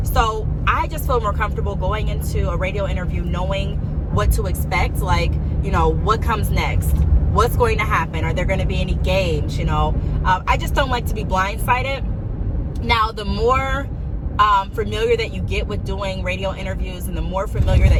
So I just feel more comfortable going into a radio interview knowing what to expect, like, what comes next. What's going to happen? Are there going to be any games? I just don't like to be blindsided. Now, the more familiar that you get with doing radio interviews, and the more familiar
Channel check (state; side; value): identical; both; correlation 1.00